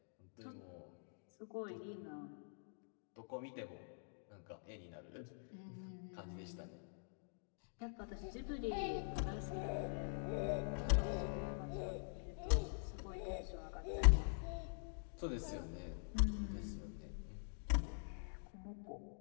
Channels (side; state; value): right; silent; digital silence